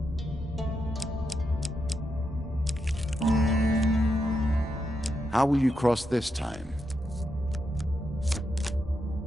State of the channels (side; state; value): both; normal; correlation 0.84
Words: How will you cross this time?